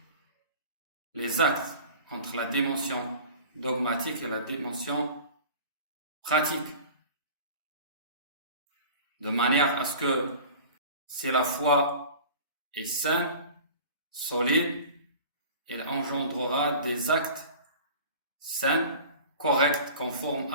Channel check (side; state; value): both; inverted; correlation -0.41